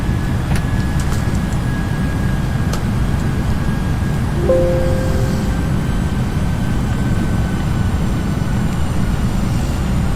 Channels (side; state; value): both; identical; correlation 1.00